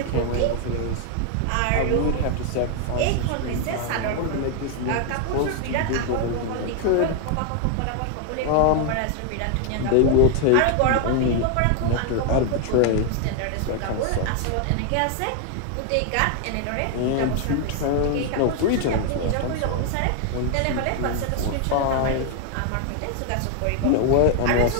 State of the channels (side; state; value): both; different; correlation 0.00